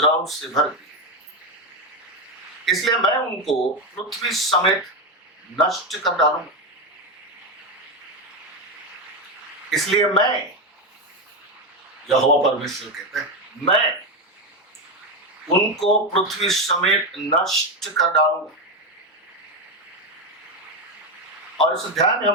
से भर गई है। इसलिए मैं उनको पृथ्वी समेत नष्ट कर डालूंगा। इसलिए मैं, यहोवा परमेश्वर कहते हैं, मैं उनको पृथ्वी समेत नष्ट कर डालूंगा। और इस अध्याय में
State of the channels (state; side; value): normal; both; correlation 0.10